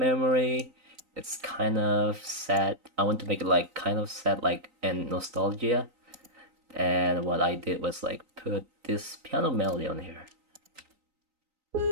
It's kind of sad. I want to make it like kind of sad, like and nostalgia. And what I did was like put this piano melody on here.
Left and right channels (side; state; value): left; late; 3.9 ms